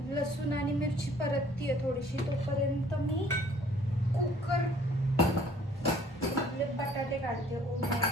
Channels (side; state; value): both; normal; correlation 0.56